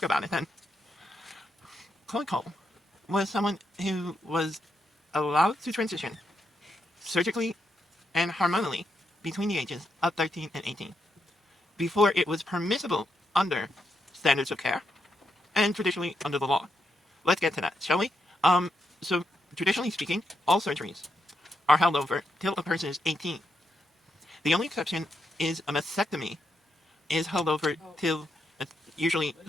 about it then. Chloe Cole was someone who was allowed to transition surgically and hormonally between the ages of 13 and 18 before it was permissible under standards of care and traditionally under the law. Let's get to that, shall we? So traditionally speaking, all surgeries are held over till a person is 18. The only exception is a mastectomy is held over till usually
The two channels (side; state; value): both; normal; correlation 0.82